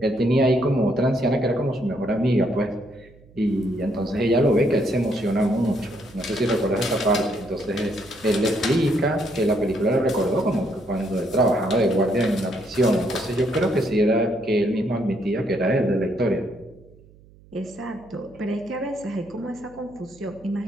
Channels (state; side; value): noise; right; hum, 26 dB below the sound